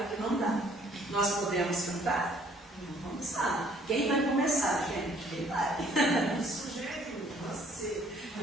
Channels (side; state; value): both; normal; correlation 0.60